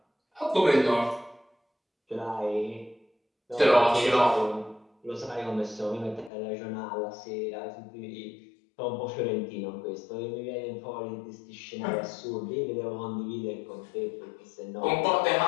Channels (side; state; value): right; drops out; at 6.3 s